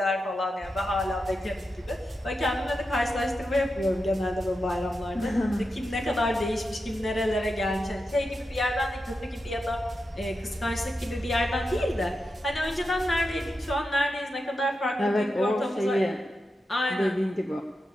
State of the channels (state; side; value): normal; both; correlation 0.89